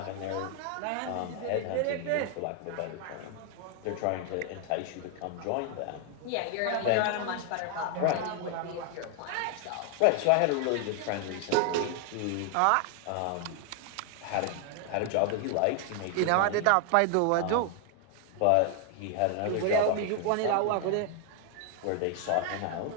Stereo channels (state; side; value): different; both; correlation 0.00